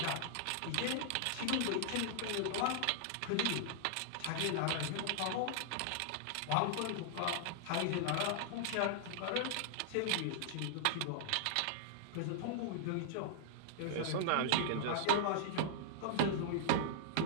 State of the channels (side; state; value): both; different; correlation -0.01